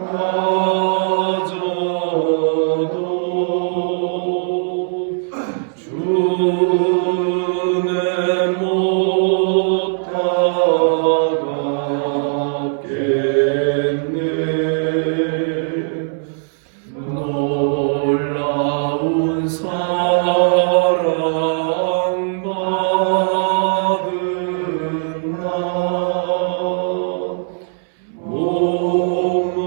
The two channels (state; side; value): silent; left; 67 dB below the other